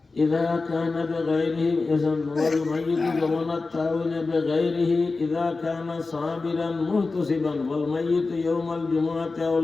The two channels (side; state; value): right; quieter; 3.8 dB